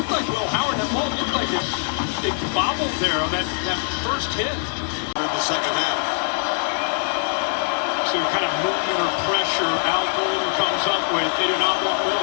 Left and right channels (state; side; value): silent; right; digital silence